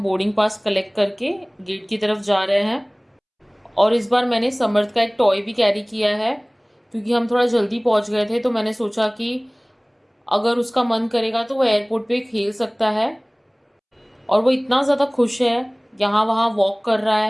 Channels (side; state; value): both; identical; correlation 1.00